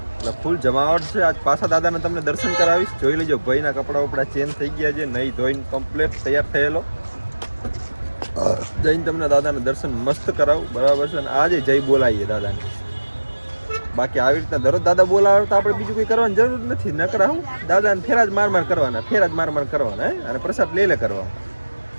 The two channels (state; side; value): inverted; both; correlation -1.00